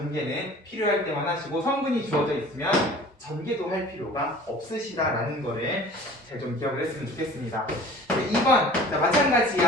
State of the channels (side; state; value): both; normal; correlation 0.45